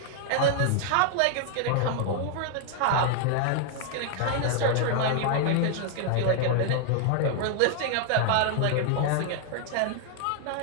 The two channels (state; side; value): different; both; correlation 0.00